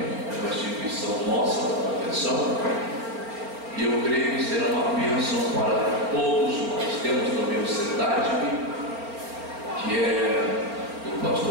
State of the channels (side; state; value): left; late; 4.4 ms